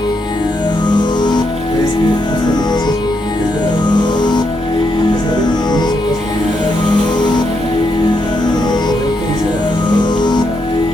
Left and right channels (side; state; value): both; normal; correlation 0.80